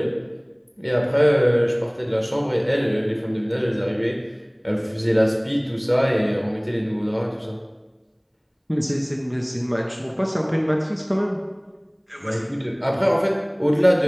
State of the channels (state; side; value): identical; both; correlation 1.00